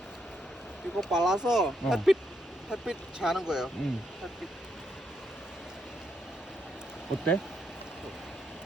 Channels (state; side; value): normal; both; correlation 0.77